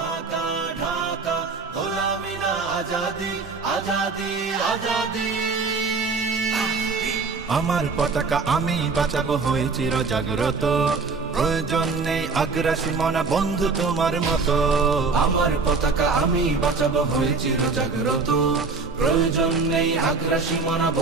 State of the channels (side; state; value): left; quieter; 4.4 dB